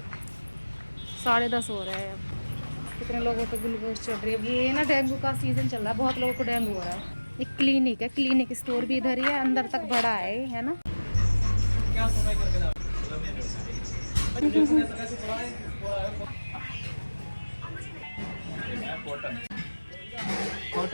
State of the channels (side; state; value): both; inverted; correlation -1.00